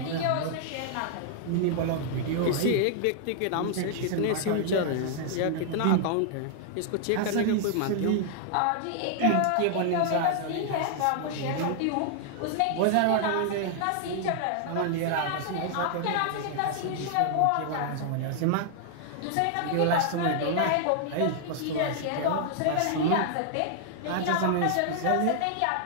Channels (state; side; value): different; both; correlation 0.00